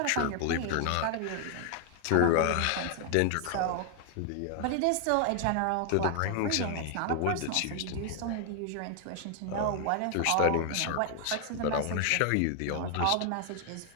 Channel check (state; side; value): different; both; correlation 0.00